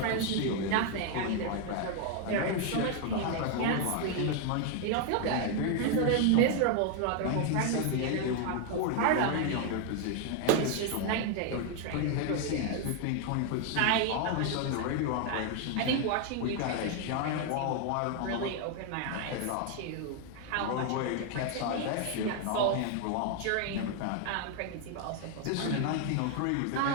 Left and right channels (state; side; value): different; both; correlation 0.00